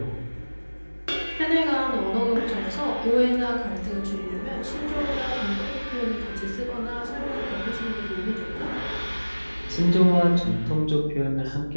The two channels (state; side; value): inverted; both; correlation -1.00